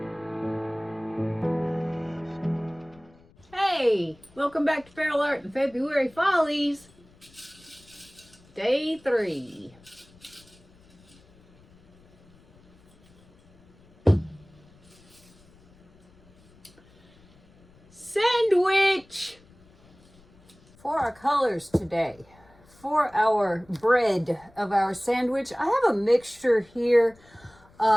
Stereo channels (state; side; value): noise; left; rumble, 28 dB below the sound